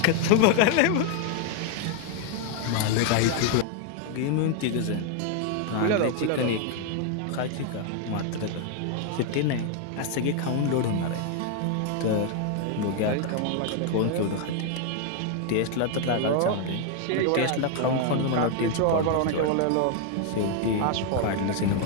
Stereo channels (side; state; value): both; different; correlation 0.00